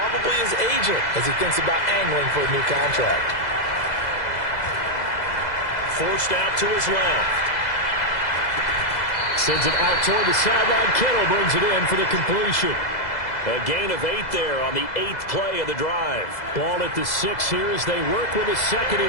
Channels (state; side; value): late; right; 2.0 ms